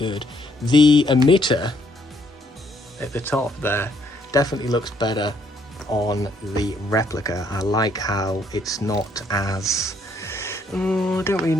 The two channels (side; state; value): both; normal; correlation 0.69